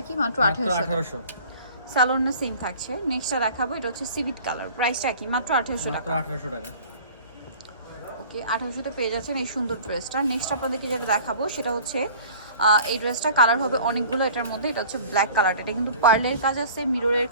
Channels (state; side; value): inverted; both; correlation -0.45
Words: কি? মাত্র 1800, সালোয়ার না সেম থাকছে। নেক্সটটা দেখাবো, এটা হচ্ছে সিভিট কালার, প্রাইসটা কি? মাত্র 1800 মাত্র টাকা। 1800 টাকা। ওকে, 1800-তে পেয়ে যাচ্ছেন এই সুন্দর ড্রেসটা। নেক্সট আপনাদেরকে যেটা দেখাবো সেটা হচ্ছে এই ড্রেসটা কালার হবে অনেকগুলো এটার মধ্যে। এটা হচ্ছে ব্ল্যাক কালার, এটা কিন্তু পার্লের কাজ আছে, মিররের